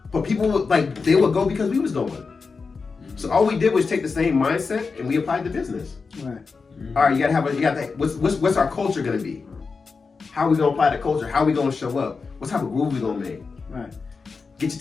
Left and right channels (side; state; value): right; quieter; 4.7 dB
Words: But people would they would go because we was going. So all we did was take the same mindset and we applied to business. Right. All right, you gotta what's our culture gonna be? How are we gonna apply the culture? How are we gonna show up? What type of groove we gonna make? Right. Get your